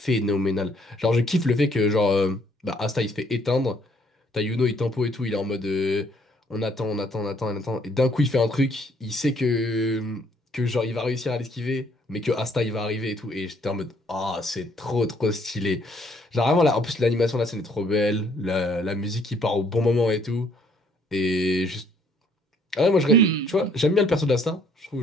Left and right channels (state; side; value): normal; both; correlation 0.64